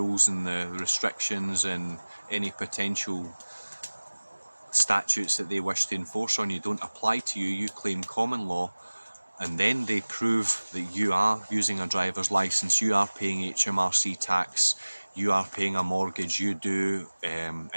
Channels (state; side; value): inverted; both; correlation -1.00